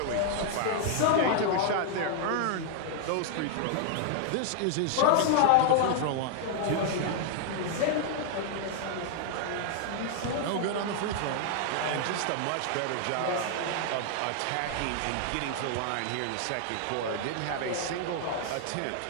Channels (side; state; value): both; different; correlation -0.01